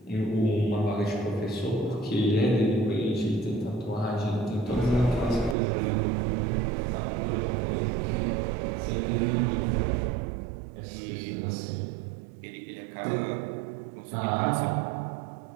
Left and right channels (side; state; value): left; drops out; at 5.6 s